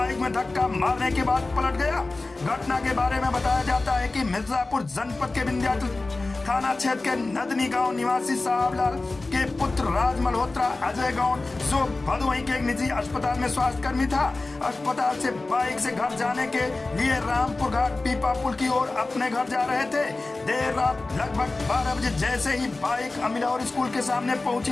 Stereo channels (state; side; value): quieter; right; 3.3 dB